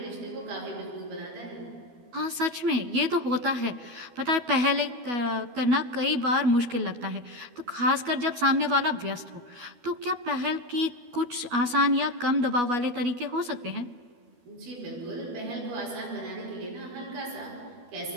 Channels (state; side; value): late; left; 12 ms